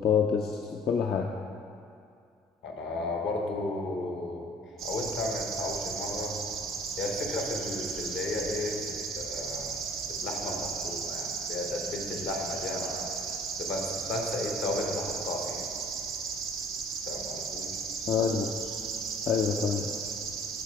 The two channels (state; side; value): normal; both; correlation 0.52